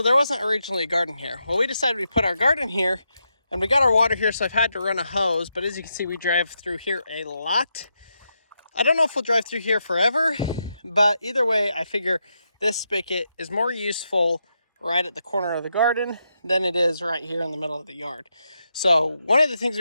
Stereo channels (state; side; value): inverted; both; correlation -0.84